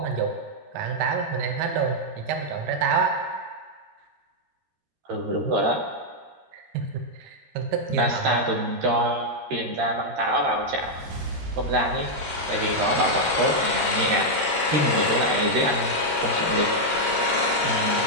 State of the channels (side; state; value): left; late; 13 ms